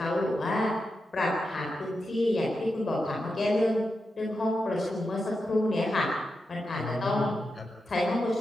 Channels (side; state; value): both; normal; correlation 0.88